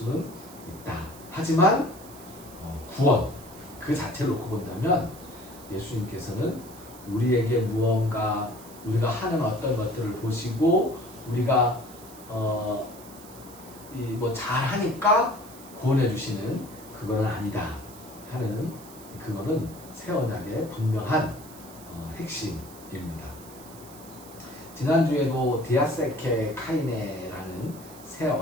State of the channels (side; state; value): right; noise; hiss, 19 dB below the sound